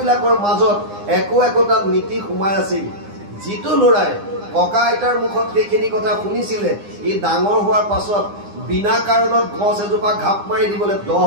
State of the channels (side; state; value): left; late; 9.8 ms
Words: মাজত একোটা নীতি সোমাই আছিল। যিটো ল'ৰাই ককা আইতাৰ মুখত সেইখিনি কথা শুনিছিলে, ই ডাঙৰ হোৱাৰ পাছত বিনা কাৰণত গছ এজোপা ঘাপ মাৰি দিবলৈ 10